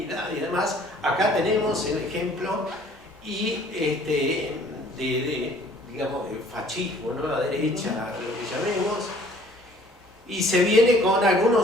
y demás. Acá tenemos el ejemplo y digamos, de fascismo, ¿no? La derecha, lo que llamemos, y se viene con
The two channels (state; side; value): normal; both; correlation 0.55